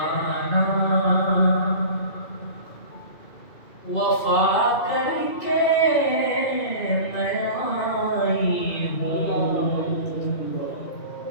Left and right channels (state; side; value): late; right; 2.4 ms